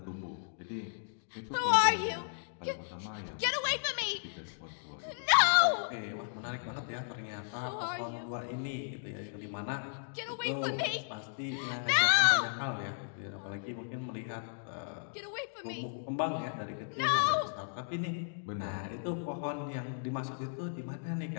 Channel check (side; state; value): right; silent; digital silence